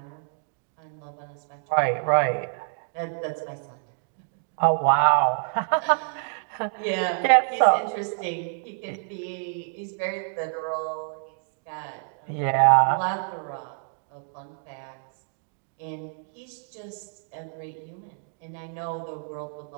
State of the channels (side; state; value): left; silent; 60 dB below the other